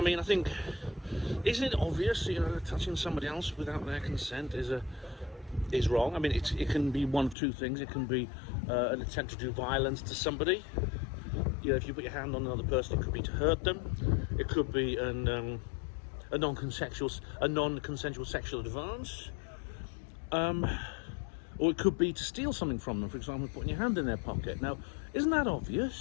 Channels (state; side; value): drops out; right; at 7.4 s